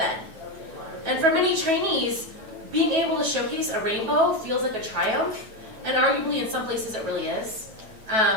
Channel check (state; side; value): late; left; 9.2 ms